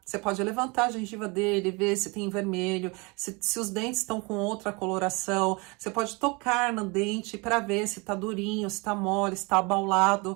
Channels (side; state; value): left; quieter; 28.3 dB